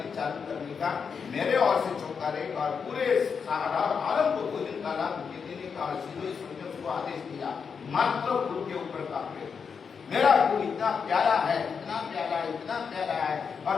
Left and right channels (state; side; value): quieter; right; 6.1 dB